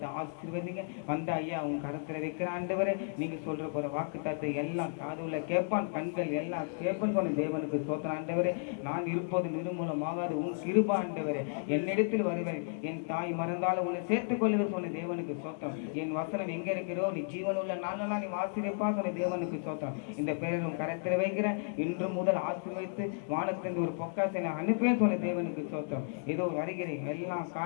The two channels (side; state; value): right; silent; digital silence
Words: ஆசீர்வதிங்க வந்த ஐயா அவங்க கரத்தில் வைக்கிற ஆண்டவரே நீங்க சொல்ற போற வாக்கு தத்தை எல்லாம் காதுல கேட்பான் கண்கள் எல்லாம் கேட்பான் சொன்ன தேவனுக்கு ஸ்தோத்திரம் ஆண்டவரே நான் இருப்பது நிர்மூலமாகாது உன் கிருபை ஆண்டவரே என்னிடத்தில் வருவேன் என் தாய் மறந்தாலும் உன்னை சேர்த்துக் கொள்ளுவேன் சொன்ன தேவனுக்கு ஸ்தோத்திரம் என் வசனம் எங்க இருக்கிறோ நீ ஜீவன் உள்ள நானெல்லாம் நீ ஆசீர்வதிப்பா சொன்ன தேவனுக்கு ஸ்தோத்திரம் இந்த பெயரும் கரத்தில் வைக்கிறேன் இன்று முதல் ஆசீர்வதித்து வானத்திலிருந்து ஒரு பொக்காசை அனுப்பேன் சொன்ன தேவனுக்கு ஸ்தோத்திரம் ஏதோ வருகிறேன் எல்லா